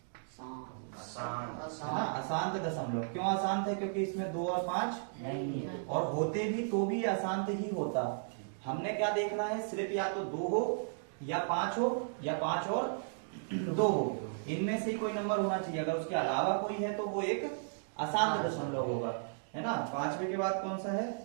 अशांत दशमलव। क्यों अशांत है, क्योंकि इसमें 2 और 5 नहीं है, और होते भी तो भी अशांत ही होता। हमने क्या देखना है, सिर्फ या तो 2 हो या 5 हो, या 5 और 2 हो, इनमें से ही कोई नंबर होना चाहिए। अगर उसके अलावा कोई है तो वो एक अशांत दशमलव होगा, है ना। 5वें के बाद कौन सा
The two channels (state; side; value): silent; left; digital silence